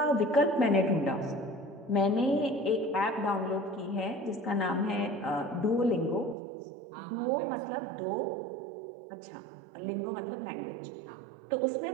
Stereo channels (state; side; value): drops out; left; at 6.4 s